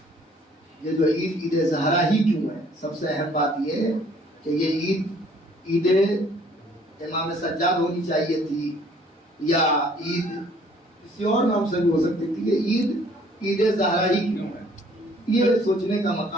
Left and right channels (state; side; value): normal; both; correlation 0.59